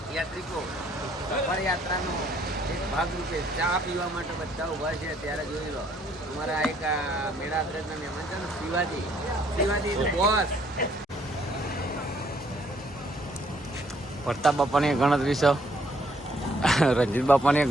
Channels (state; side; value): normal; both; correlation 0.66